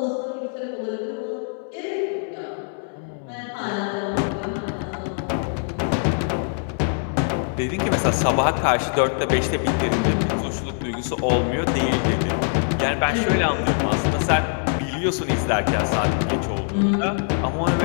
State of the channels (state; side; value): silent; right; 63 dB below the other